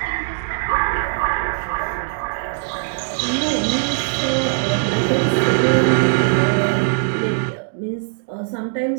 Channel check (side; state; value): left; silent; digital silence